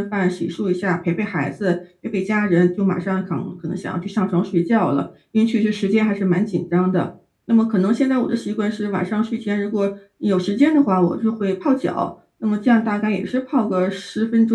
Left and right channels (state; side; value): identical; both; correlation 1.00